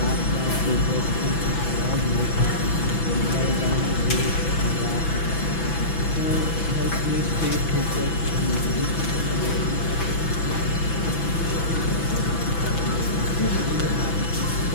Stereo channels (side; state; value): right; late; 6.0 ms